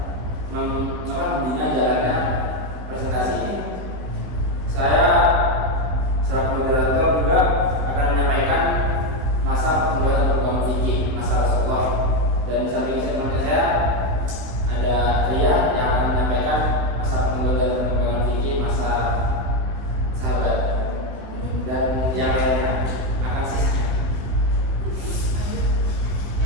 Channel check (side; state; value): left; late; 16 ms